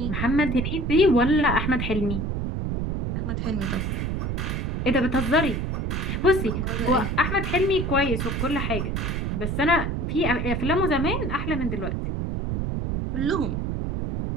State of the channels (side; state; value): right; noise; rumble, 1 dB below the sound